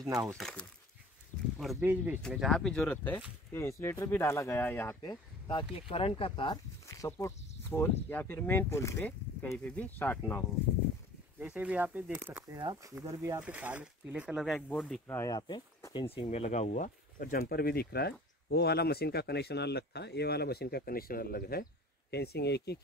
ना हो सके। और बीच बीच में जहाँ भी जरूरत है ये इंसुलेटर भी डाला गया है यहाँ पे, ताकि करंट का तार सपोर्ट पोल या फिर मेन पोल पे कहीं पे भी शॉर्ट ना हो। जैसे भी यहाँ पे देख सकते हैं आप, इधर भी यहाँ पे पीले कलर का एक बोर्ड दिख रहा है यहाँ पे फेंसिंग में लगा हुआ, और जंपर भी दिख रहा है। वो वाला मशीन का कनेक्शन अलग था, ये वाला मशीन का कनेक्शन अलग है। फेंसिंग एक ही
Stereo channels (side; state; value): both; normal; correlation 0.46